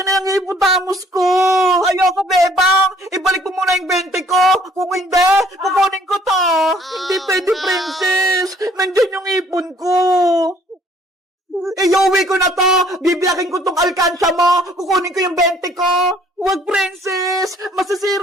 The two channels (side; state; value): both; normal; correlation 0.60